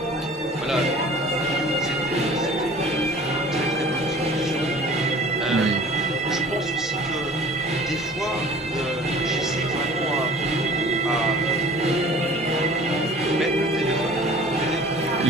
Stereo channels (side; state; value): both; normal; correlation 0.47